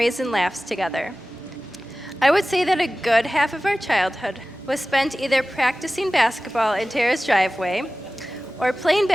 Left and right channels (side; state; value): both; normal; correlation 0.97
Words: and laughs together. I would say that a good half of our childhood was spent either practicing basketball in Tarah's driveway or playing